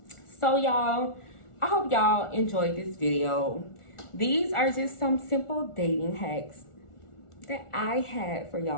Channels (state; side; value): late; right; 1.4 ms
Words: So, y'all, I hope y'all enjoyed this video. These are just some simple dating hacks that I had for